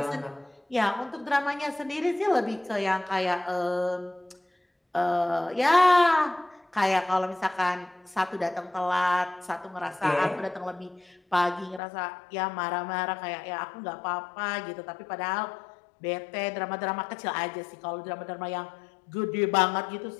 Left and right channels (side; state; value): right; drops out; at 11.8 s